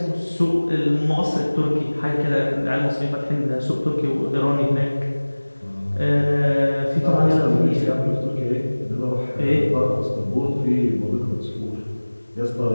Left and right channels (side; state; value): both; inverted; correlation -1.00